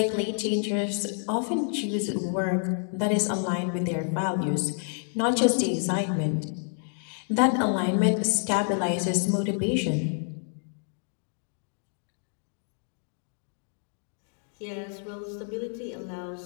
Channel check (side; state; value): right; silent; 55 dB below the other